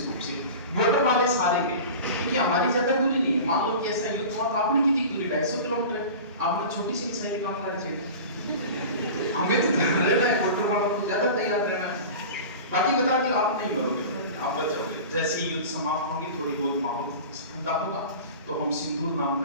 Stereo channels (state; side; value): inverted; both; correlation -0.35